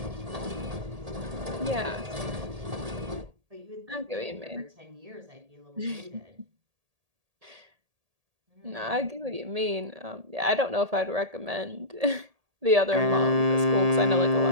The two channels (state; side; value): late; left; 1.8 ms